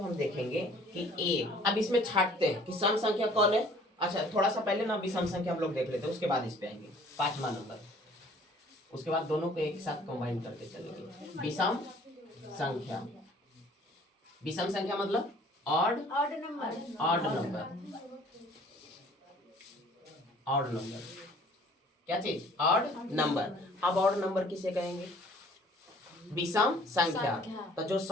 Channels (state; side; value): normal; both; correlation 0.54